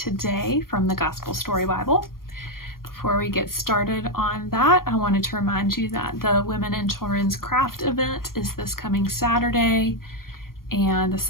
from the Gospel Story Bible. Before we get started on that, I wanted to remind you that the Women and Children's Craft event is this coming Saturday, and the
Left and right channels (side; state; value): right; late; 0.91 ms